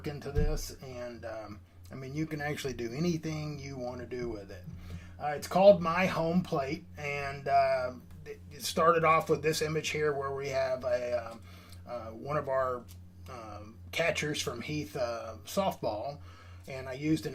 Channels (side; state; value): both; identical; correlation 1.00